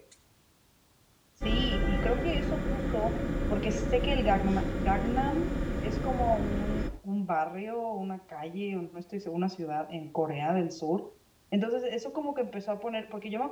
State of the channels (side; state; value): both; identical; correlation 1.00